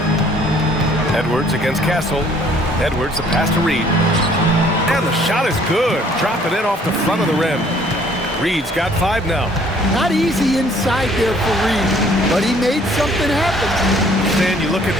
Edwards against Castle. Edwards, the pass to Reed. And the shot is good. Drop it in off the front of the rim. Reed's got 5 now. Not easy inside there for Reed, but he made something happen. Stan, you look at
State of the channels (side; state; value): both; normal; correlation 0.59